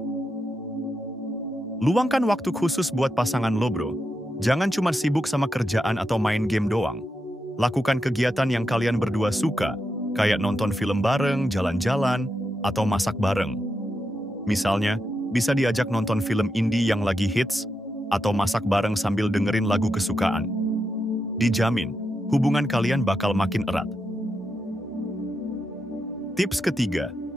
Luangkan waktu khusus buat pasangan lo, bro. Jangan cuma sibuk sama kerjaan atau main game doang. Lakukan kegiatan yang kalian berdua suka, kayak nonton film bareng, jalan-jalan, atau masak bareng. Misalnya, bisa diajak nonton film indie yang lagi hits, atau masak bareng sambil dengerin lagu kesukaan. Dijamin, hubungan kalian bakal makin erat. Tips ketiga,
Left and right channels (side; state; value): both; normal; correlation 0.85